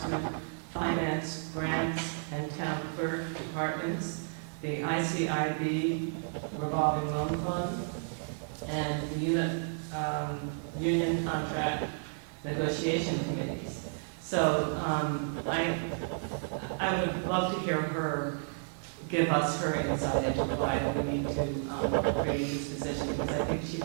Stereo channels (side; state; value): left; silent; digital silence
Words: finance, grants, and town clerk departments, the ICIB revolving loan fund, and the union contract negotiation committees. So I would love to hear her give us her insight into why we need to create this position, because I think she